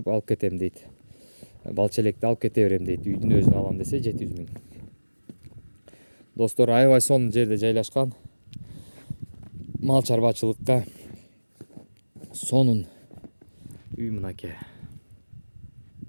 алып кетем дейт. Балчелекти алып кете берем дейт. Үйдүн өзүн алам десе 700 миң. Достор, аябай сонун жерде жайлашкан. Мал чарбачылыкка сонун үй мынакей.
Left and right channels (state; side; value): inverted; both; correlation -1.00